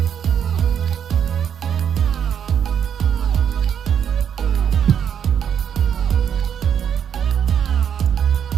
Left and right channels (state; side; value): quieter; left; 8.4 dB